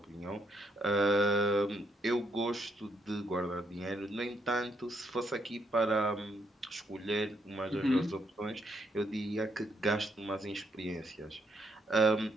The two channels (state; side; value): normal; both; correlation 0.74